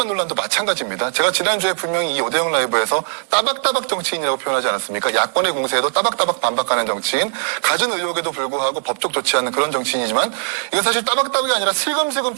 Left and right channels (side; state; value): left; silent; 66 dB below the other